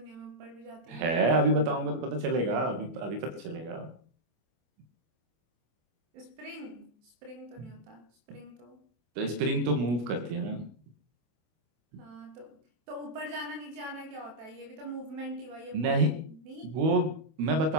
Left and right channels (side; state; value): left; late; 25 ms